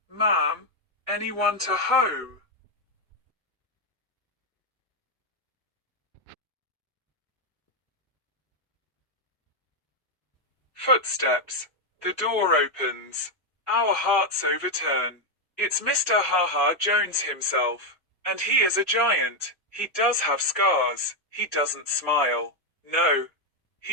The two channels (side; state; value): both; normal; correlation 0.04